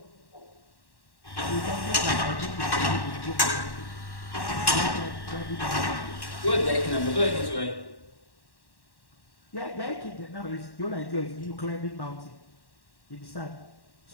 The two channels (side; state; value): right; late; 1.1 ms